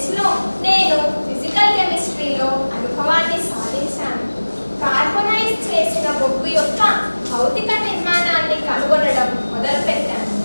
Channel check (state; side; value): inverted; both; correlation -1.00